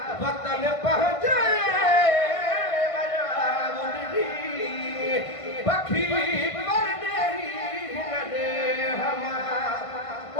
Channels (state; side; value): late; right; 1.5 ms